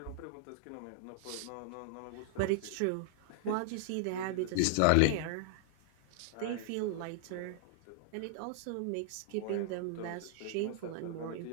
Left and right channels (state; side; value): different; both; correlation -0.01